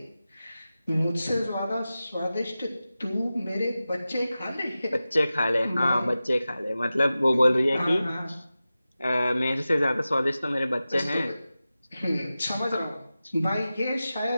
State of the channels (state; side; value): inverted; both; correlation -0.95